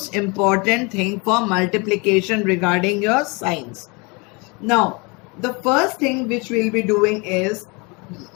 important thing for multiplication regarding your signs. Now, the first thing which we'll be doing is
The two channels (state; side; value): quieter; right; 29.0 dB